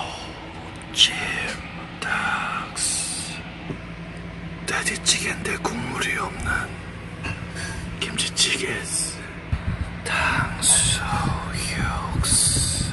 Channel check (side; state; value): both; identical; correlation 1.00